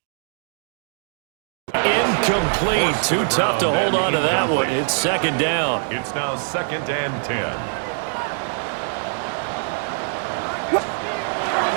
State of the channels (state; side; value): silent; left; digital silence